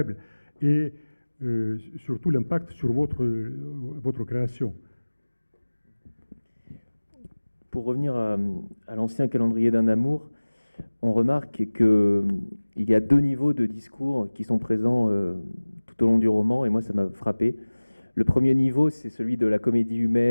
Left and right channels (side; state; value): both; inverted; correlation -1.00